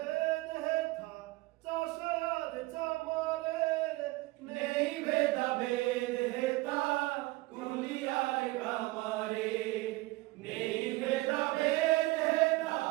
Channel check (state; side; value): quieter; left; 21.3 dB